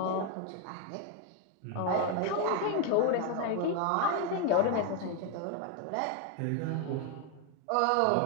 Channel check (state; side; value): different; both; correlation 0.01